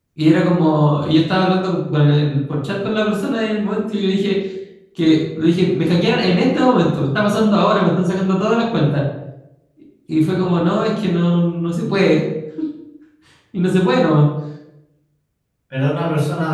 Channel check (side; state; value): both; identical; correlation 1.00